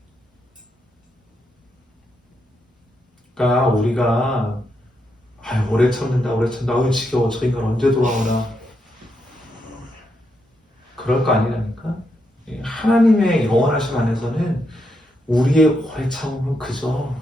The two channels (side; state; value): both; normal; correlation 0.81